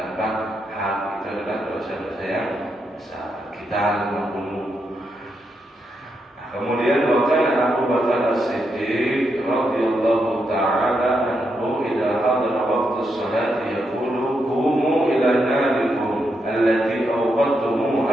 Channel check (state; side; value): normal; both; correlation 0.82